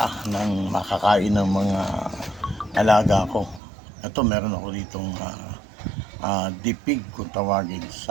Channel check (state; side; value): drops out; left; at 3.6 s